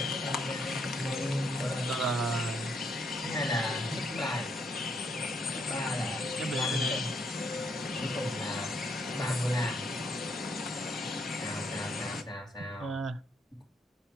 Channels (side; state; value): both; normal; correlation 0.73